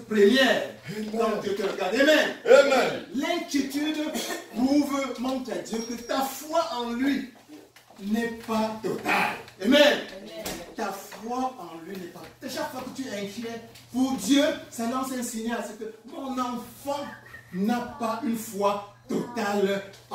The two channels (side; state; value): both; identical; correlation 1.00